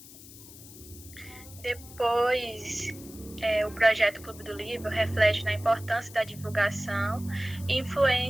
Depois, o projeto Clube do Livro reflete na importância da divulgação e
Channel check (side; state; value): left; noise; hiss, 18 dB below the sound